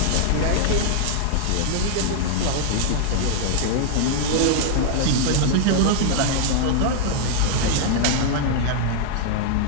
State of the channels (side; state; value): both; different; correlation -0.01